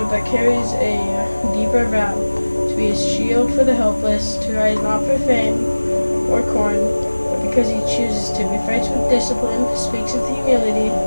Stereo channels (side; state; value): both; inverted; correlation -1.00